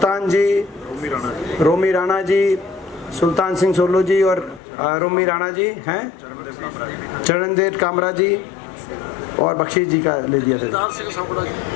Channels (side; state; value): right; drops out; at 4.6 s